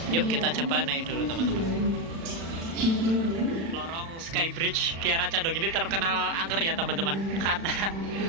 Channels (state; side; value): late; left; 36 ms